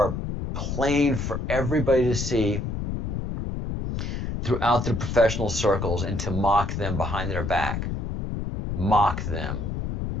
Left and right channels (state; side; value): noise; left; rumble, 3 dB below the sound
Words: plain for everybody to see throughout the professional circles and to mock them behind their back. Mock them.